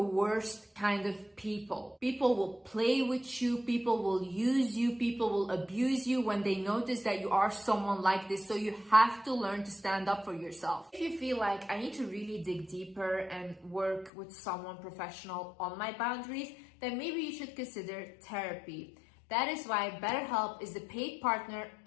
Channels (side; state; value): right; drops out; at 14.1 s